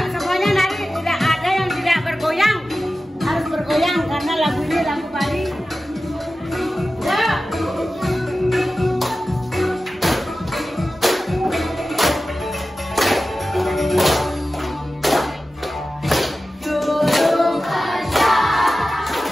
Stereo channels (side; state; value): both; normal; correlation 0.94